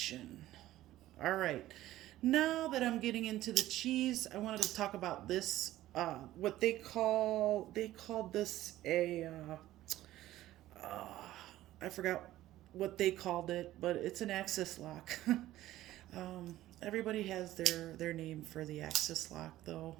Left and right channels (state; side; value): quieter; left; 14.9 dB